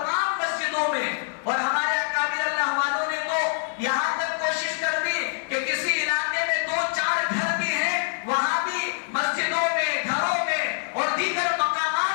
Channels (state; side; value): silent; right; 62 dB below the other